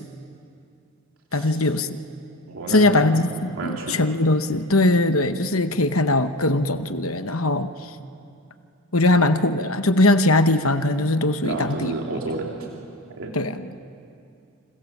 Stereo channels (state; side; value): normal; both; correlation 0.30